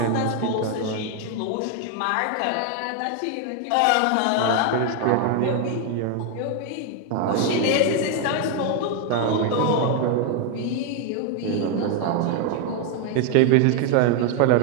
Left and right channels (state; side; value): different; both; correlation 0.01